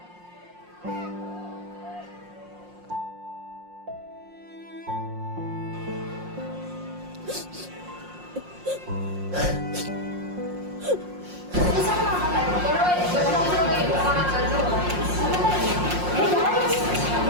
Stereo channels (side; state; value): left; late; 5.6 ms